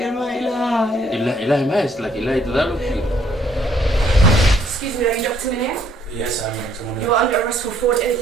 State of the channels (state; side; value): normal; both; correlation 0.66